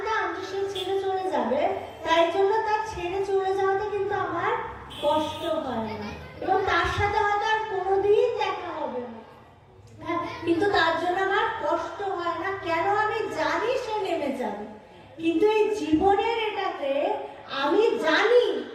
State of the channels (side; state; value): both; identical; correlation 1.00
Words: যে সে ছেড়ে চলে যাবে, তাই জন্য তার ছেড়ে চলে যাওয়াতে কিন্তু আমার কষ্ট হয় না, এবং তার সাথে হয়তো আর কোনোদিন দেখা হবে না, কিন্তু তার জন্য আমার কষ্ট হয় না। কেন? আমি জানি সে নেমে যাবে। কিন্তু এই জীবনের এটাতে আমি জানি,